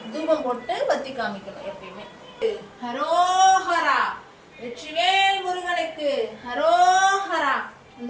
தூபம் போட்டு பத்தி காமிக்கணும் எப்பயுமே. ஹரோஹரா, வெற்றிவேல் முருகனுக்கு ஹரோஹரா.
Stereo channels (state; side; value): identical; both; correlation 1.00